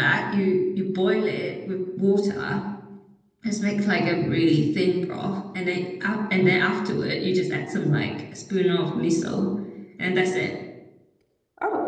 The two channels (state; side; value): identical; both; correlation 1.00